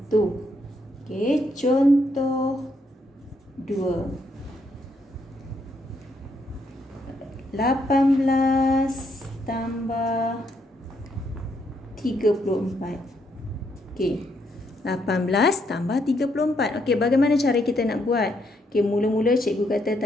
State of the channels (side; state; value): both; normal; correlation 0.75